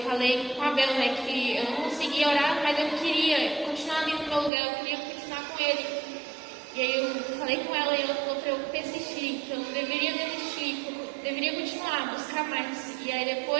falei com a Bel, né, que eu não conseguia orar, mas eu queria continuar ali no meu lugar, eu queria continuar com ele. E aí eu falei com ela e ela falou para eu persistir, que eu não deveria desistir, que eu deveria continuar, buscar mais. E aí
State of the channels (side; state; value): left; drops out; at 4.5 s